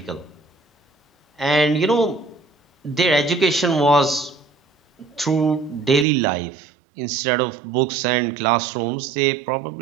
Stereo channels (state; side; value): drops out; left; at 6.1 s